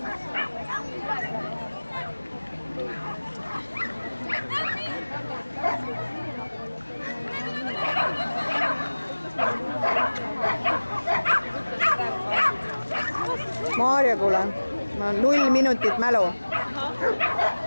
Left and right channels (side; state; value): both; inverted; correlation -1.00